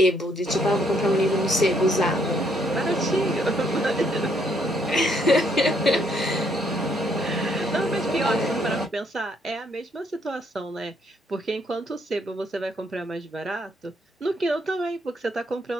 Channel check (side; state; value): both; normal; correlation 0.70